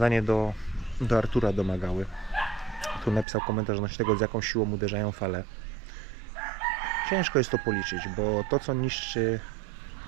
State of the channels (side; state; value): left; drops out; at 3.2 s